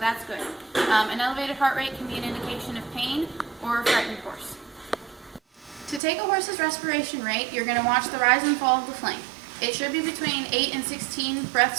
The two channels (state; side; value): drops out; left; at 6.0 s